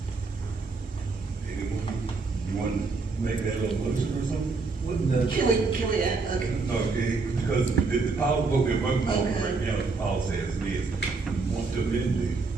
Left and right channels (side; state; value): left; quieter; 4.1 dB